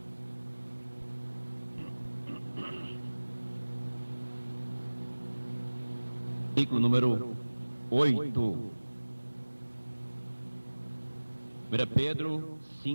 Versículo número 8. 1 Pedro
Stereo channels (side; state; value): both; inverted; correlation -1.00